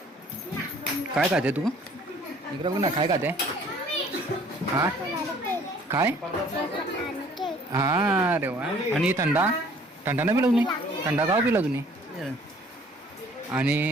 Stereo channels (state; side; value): normal; both; correlation 0.56